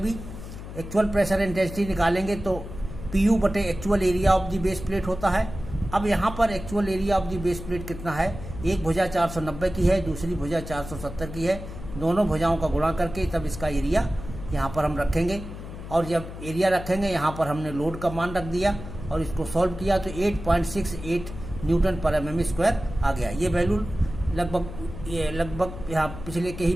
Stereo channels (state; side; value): noise; left; hum, 11 dB below the sound